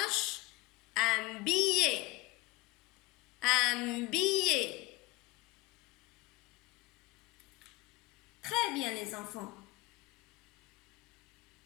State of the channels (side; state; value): right; quieter; 20.9 dB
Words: un billet. Un billet. Très bien les enfants.